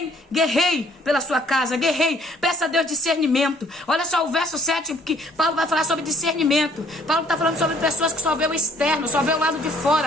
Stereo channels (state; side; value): normal; both; correlation 0.61